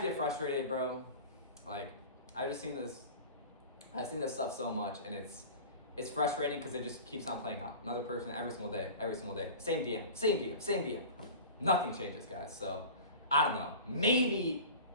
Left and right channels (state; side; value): inverted; both; correlation -0.37